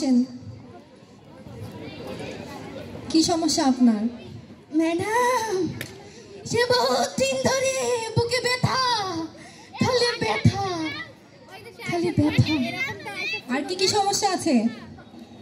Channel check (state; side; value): identical; both; correlation 1.00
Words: কি সমস্যা আপনার? ম্যাডাম, সে বহুত দিন ধরে বুকে ব্যথা, খালি ব্যথা, খালি ব্যথা। আর কি কি সমস্যা আছে?